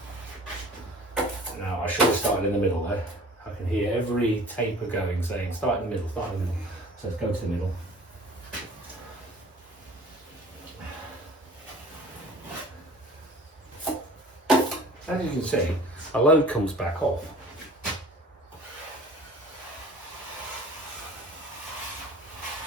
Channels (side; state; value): both; normal; correlation 0.46